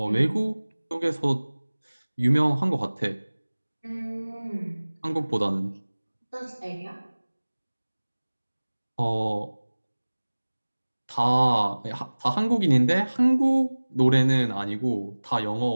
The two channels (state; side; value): inverted; both; correlation -1.00